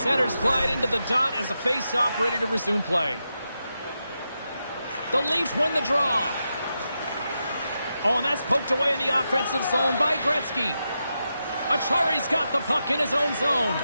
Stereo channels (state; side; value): inverted; both; correlation -0.87